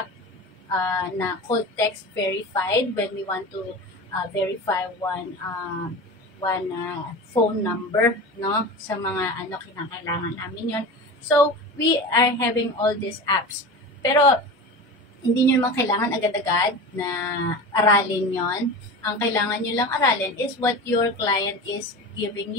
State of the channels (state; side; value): normal; both; correlation 0.30